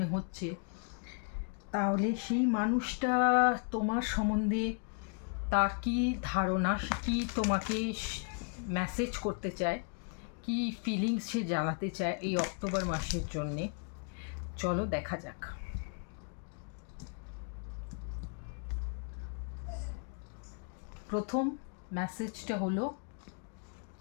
হচ্ছে, তাহলে সেই মানুষটা তোমার সম্বন্ধে তার কী ধারণা, কী তোমাকে মেসেজ করতে চায়, কী ফিলিংস সে জানাতে চায় এই অক্টোবর মাসের জন্যে। চলো দেখা যাক। প্রথম মেসেজটা হলো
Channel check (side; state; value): right; quieter; 39.7 dB